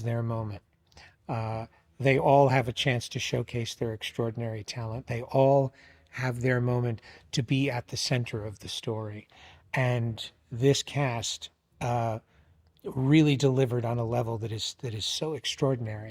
their moment. They all have a chance to showcase their extraordinary talent. They all have their moment to be at the center of the story. And this cast really delivered on a level that is so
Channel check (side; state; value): both; identical; correlation 1.00